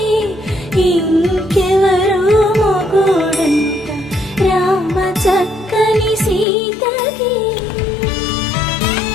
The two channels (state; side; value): drops out; right; at 6.5 s